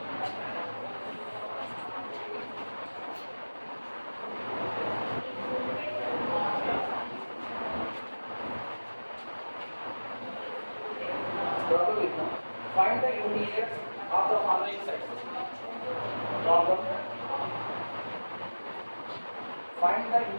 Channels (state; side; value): inverted; both; correlation -1.00